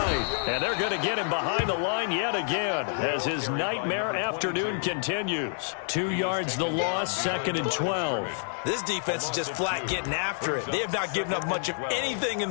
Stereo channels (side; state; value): right; silent; digital silence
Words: And they're going to get him behind the line yet again as his nightmare afternoon continues. 2 yards the loss, 2nd and 12. This defense is just flat getting after it. They have not given up much of anything